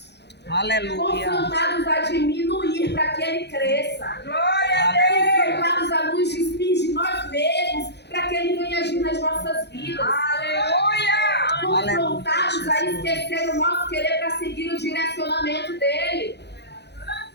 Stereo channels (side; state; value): right; late; 0.49 ms